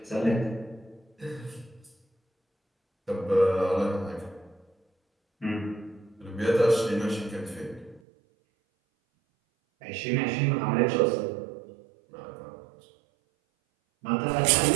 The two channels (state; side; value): drops out; left; at 8.0 s